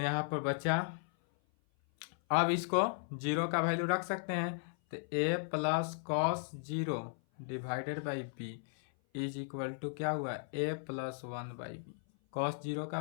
पर बचा, अब इसको जीरो का वैल्यू रख सकते हैं, तो A plus cos zero divided by B is equal to क्या हुआ, ए plus 1 by B, cos zero का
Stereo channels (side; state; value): right; silent; 54 dB below the other